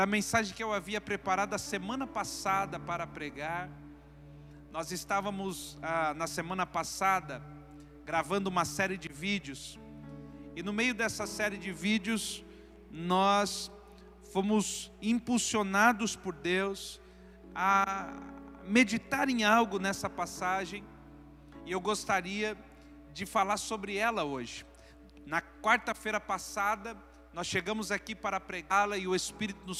a mensagem que eu havia preparado a semana passada para pregar. Nós estávamos na semana passada gravando uma série de vídeos, e no meio dessa série de vídeos nós fomos impulsionados por Deus a meditar em algo nessa passagem, e eu gostaria de falar sobre ela hoje. Na quarta-feira passada nós chegamos aqui para pregá-la e o Espírito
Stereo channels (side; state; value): both; identical; correlation 1.00